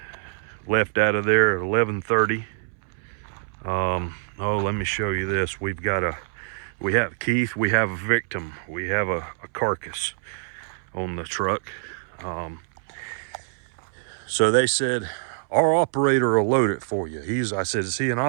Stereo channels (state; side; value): silent; left; 62 dB below the other